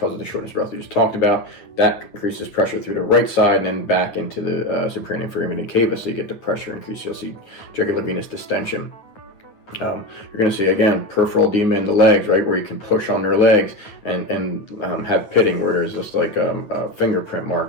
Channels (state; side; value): late; right; 9.2 ms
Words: the shortness of breath we just talked about. That increases pressure through the right side and then back into the superior and inferior vena cava, so you get the pressure increase. You'll see jugular venous distension. You're going to see, again, peripheral edema in the legs, right, where you can push on their legs and have pitting, where there's just like a fingerprint